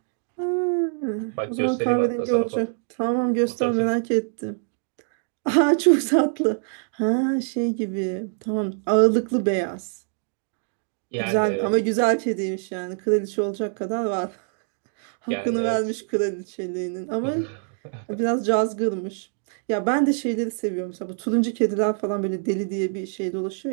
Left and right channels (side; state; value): left; silent; digital silence